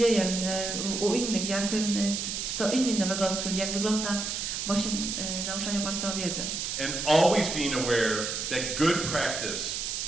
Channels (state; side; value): noise; right; hiss, 3 dB below the sound